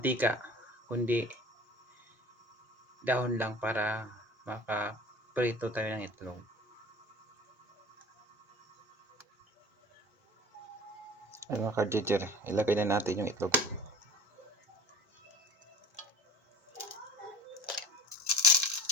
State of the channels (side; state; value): both; normal; correlation 0.43